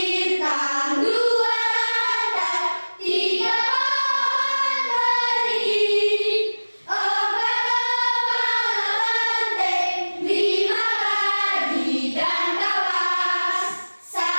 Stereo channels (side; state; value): both; inverted; correlation -1.00